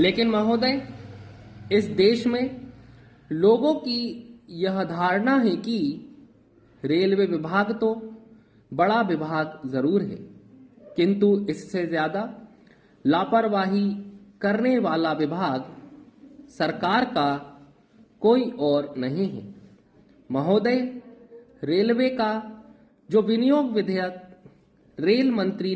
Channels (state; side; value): identical; both; correlation 1.00